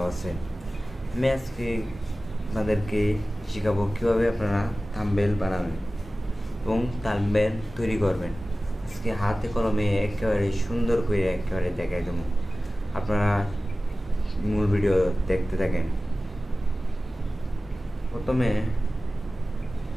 আছেন। আমি আজকে আপনাদেরকে শেখাবো কীভাবে আপনারা থাম্বনেল বানাবেন এবং থাম্বনেল তৈরি করবেন। আজকে হাতে কলমে একেবারে সুন্দর করে একেবারে দেখাই দেবো। আপনারা মূল ভিডিও দেখতে থাকেন। প্রথমে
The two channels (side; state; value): both; normal; correlation 0.96